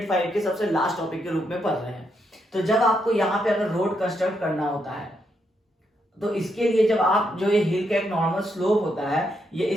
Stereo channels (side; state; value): both; normal; correlation 0.79